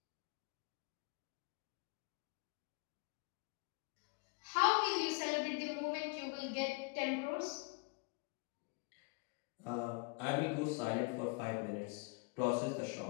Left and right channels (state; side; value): quieter; right; 30.9 dB